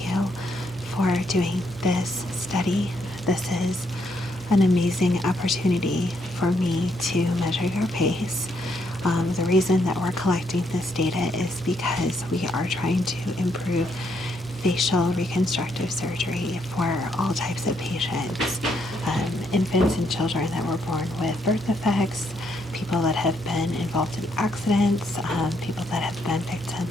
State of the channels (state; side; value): normal; both; correlation 0.75